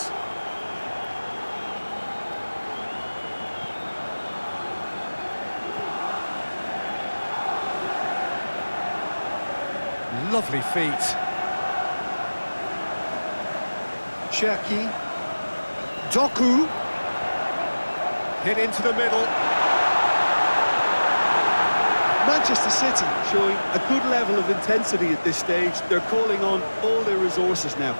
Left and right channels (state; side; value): inverted; both; correlation -1.00